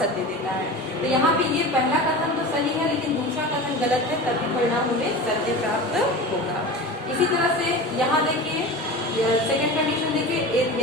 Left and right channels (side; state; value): both; normal; correlation 0.32